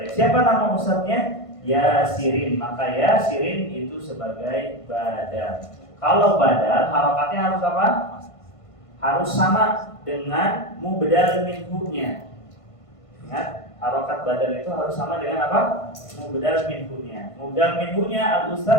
siapa nama ustadznya? Yasirin. Maka Yasirin itu sebagai badal. Kalau badal harokatnya harus apa? Harus sama dengan mubdal minhu-nya. Ingat, harokat badal itu harus sama dengan apa? Mubdal minhu-nya. Mubdal minhu-nya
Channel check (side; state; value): right; late; 1.5 ms